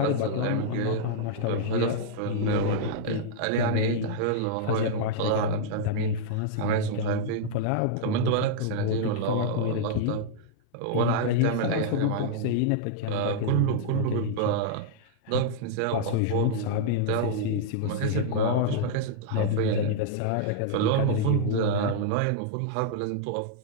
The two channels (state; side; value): different; both; correlation -0.02